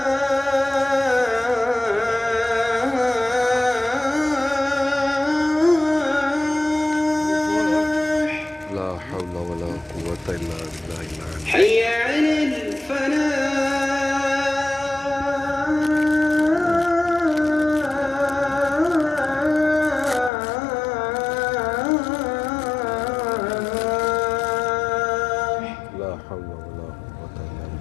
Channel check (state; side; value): drops out; right; at 20.3 s